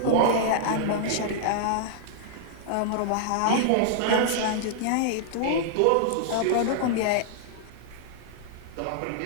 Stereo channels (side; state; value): both; different; correlation -0.01